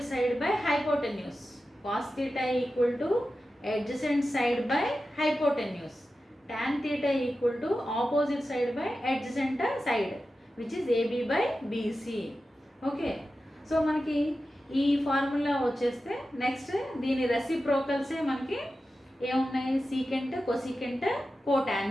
side by hypotenuse. Cos theta equal to adjacent side by hypotenuse. Tan theta equal to opposite side by adjacent side, which is AB/BC. Okay, so మనకి ఈ ఫార్ములా వచ్చేస్తే నెక్స్ట్ దీని రెసిప్రోకల్సే మనకి ఏమున్నాయి, secant, cosecant,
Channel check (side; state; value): both; normal; correlation 0.93